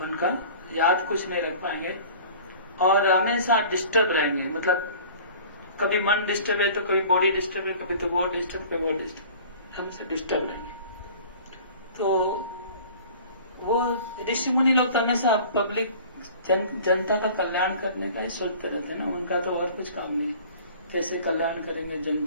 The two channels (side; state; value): both; inverted; correlation -0.45